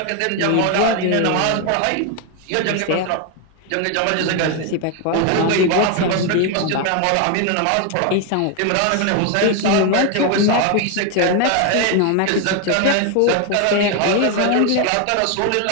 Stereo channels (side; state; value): both; different; correlation 0.01